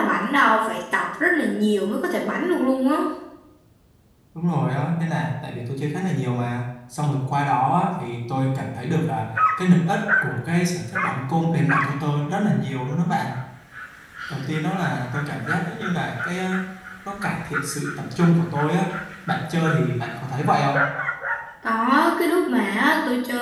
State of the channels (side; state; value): both; identical; correlation 1.00